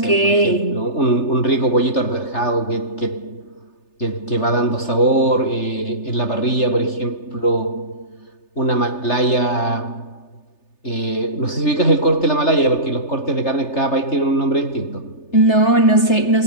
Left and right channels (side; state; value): right; late; 3.3 ms